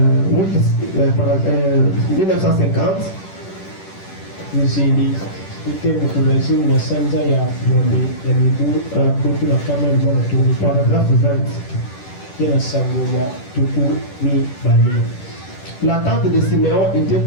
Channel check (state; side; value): late; right; 10 ms